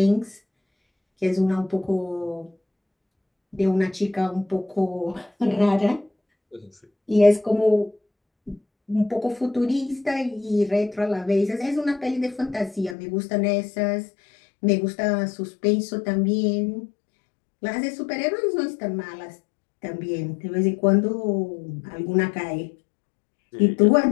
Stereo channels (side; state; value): right; drops out; at 13.0 s